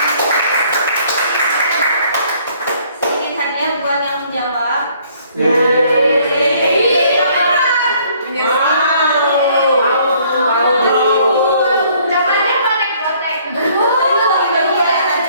Sedikit hadiah buat yang menjawab.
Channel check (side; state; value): both; inverted; correlation -0.61